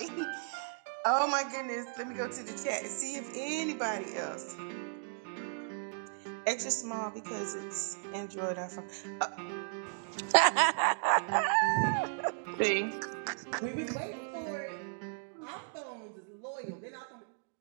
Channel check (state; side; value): silent; left; digital silence